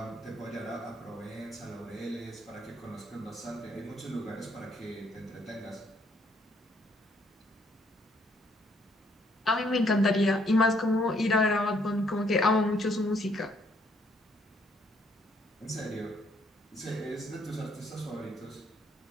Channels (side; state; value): both; normal; correlation 0.68